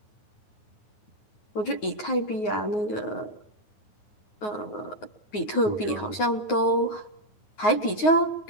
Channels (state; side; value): late; right; 9.5 ms